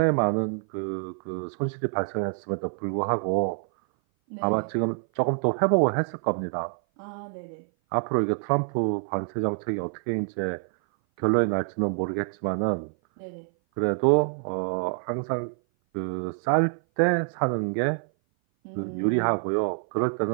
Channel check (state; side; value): silent; left; 57 dB below the other